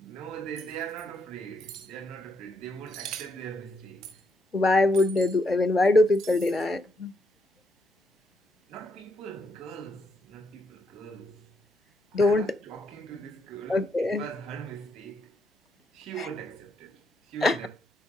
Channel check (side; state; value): both; normal; correlation 0.77